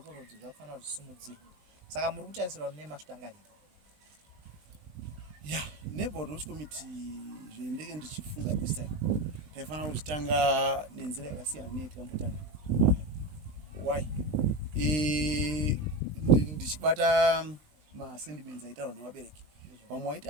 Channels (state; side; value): late; left; 20 ms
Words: zvakufanira kuti zvisumudzirwe. Saka muri kutarisirwa mune masvitangariro? Neighborhood watch committee zvendenge ndichifunga this time taifanira kuchitanga nenzira yakasiyana neyatakambotanga. Why? Ndichibata masentiments aitaurwa nevabereki vamwe vaiti